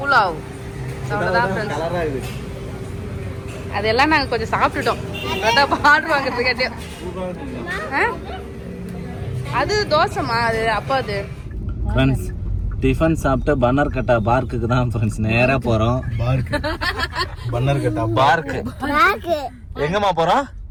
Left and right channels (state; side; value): identical; both; correlation 1.00